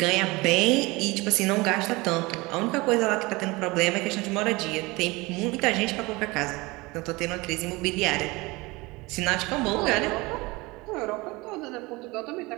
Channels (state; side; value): quieter; left; 23.3 dB